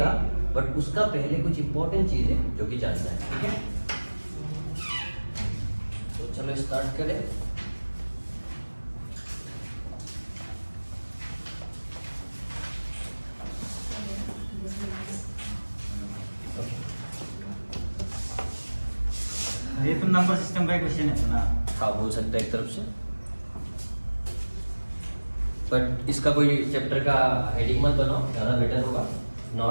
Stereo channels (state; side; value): inverted; both; correlation -1.00